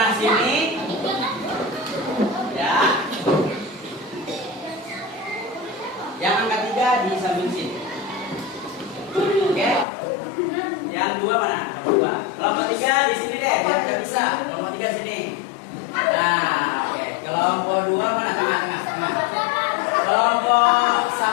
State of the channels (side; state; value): right; drops out; at 9.9 s